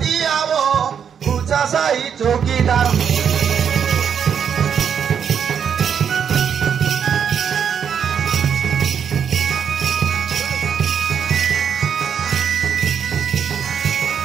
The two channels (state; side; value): quieter; left; 7.7 dB